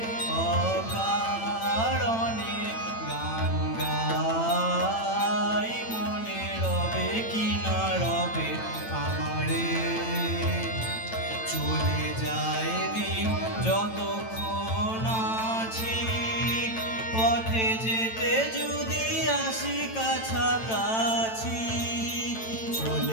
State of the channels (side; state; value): right; late; 9.0 ms